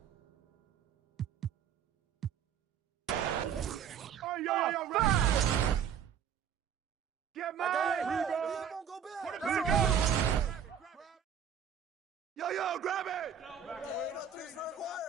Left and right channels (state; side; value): quieter; left; 8.1 dB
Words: Yo, grab it! Hey, no threes for